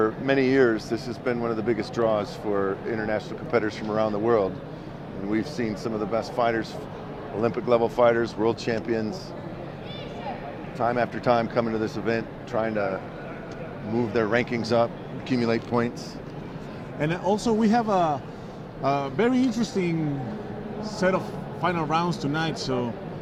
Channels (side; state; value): both; identical; correlation 1.00